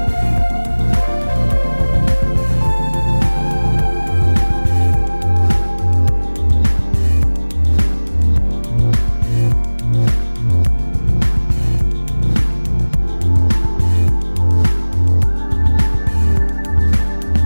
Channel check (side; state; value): both; inverted; correlation -1.00